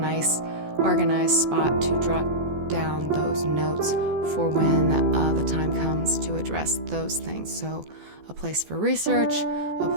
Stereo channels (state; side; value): late; left; 14 ms